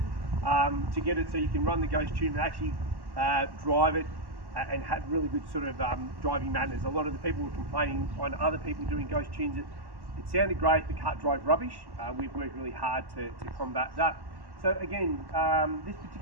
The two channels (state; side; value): late; left; 1.1 ms